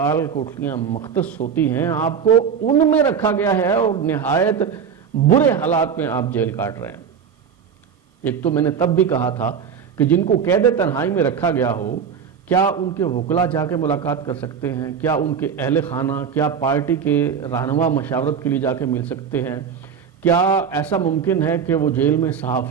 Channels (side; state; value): left; quieter; 7.1 dB